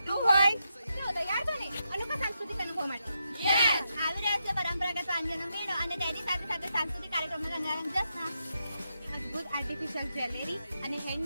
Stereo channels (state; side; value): inverted; both; correlation -0.84